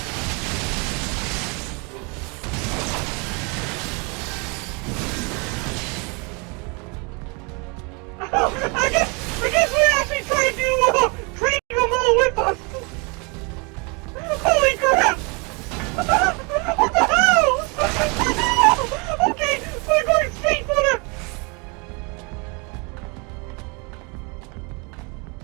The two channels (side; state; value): left; quieter; 31.3 dB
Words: Oh, God! I guess we're actually trying to trade them all with us. Holy crap! What the hell? Okay, we're going straight for the...